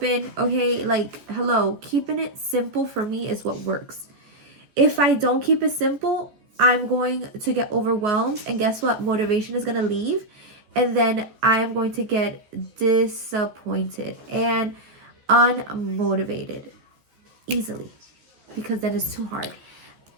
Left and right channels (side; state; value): left; late; 14 ms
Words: okay? Like, hello, keeping it simple for me is what works. If I don't keep it simple, I'm going to get overwhelmed, and guess what? Motivation is going to leave, and then I am going to get disappointed and unmotivated easily, because then it's too hard.